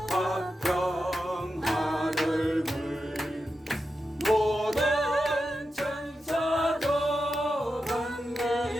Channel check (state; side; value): normal; both; correlation 0.89